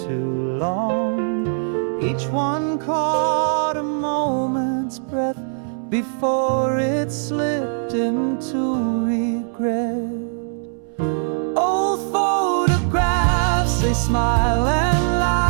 long. Each one caught a moment's breath before it slipped into regret. Old photographs, they smile and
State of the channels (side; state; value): left; silent; 65 dB below the other